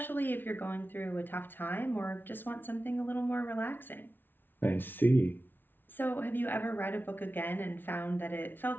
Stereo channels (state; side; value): late; right; 0.097 ms